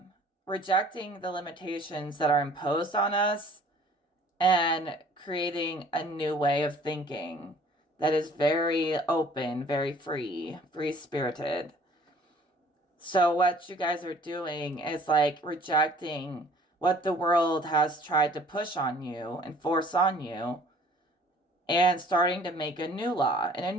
Rejecting the limitations that are imposed on us and creating a new way of thinking that is very open, very free-spirited. So what you guys are doing is rejecting what the world has tried to push on you and force on you, and starting to make a new law in a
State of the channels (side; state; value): both; normal; correlation 0.53